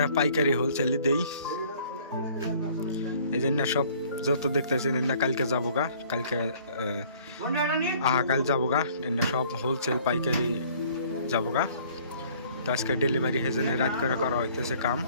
পাইকারি হোলসেলই দেই, এই জন্য সব যত দেখতেছেন এনে কালকে যাবো গা, কালকে কাল যাবো গা, এনে সব হোলসেল পাইকারি যাবো গা। তো আজকে ডেলিভারি হেজনে রাত করে করা হইতেছে কাম।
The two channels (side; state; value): both; inverted; correlation -0.56